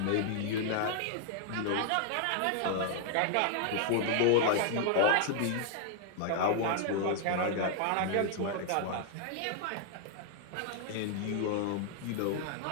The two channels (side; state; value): both; different; correlation 0.00